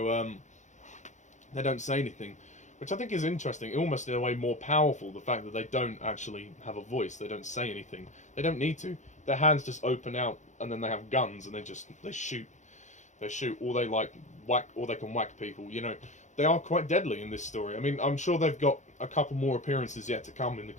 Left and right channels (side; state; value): right; late; 0.35 ms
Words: they don't say anything, which I think is interesting. Almost in a way more powerful. The fact that they don't actually have a voice. They don't say anything. They don't need to. Their hands just open out, and then they have guns, and they shoot. They shoot, or they like whack, or they can whack people. You know, they are quite deadly in this story. I mean, I'm sure they've got a couple more appearances yet to come in the